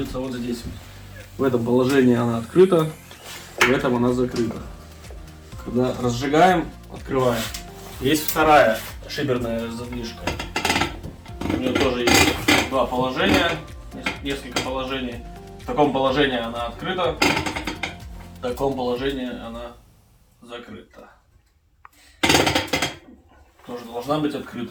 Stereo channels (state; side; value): identical; both; correlation 1.00